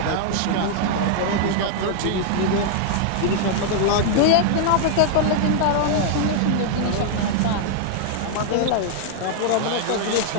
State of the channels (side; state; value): both; different; correlation -0.01